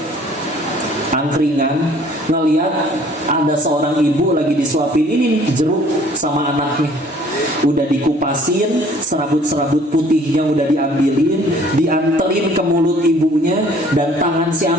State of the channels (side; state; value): both; normal; correlation 0.55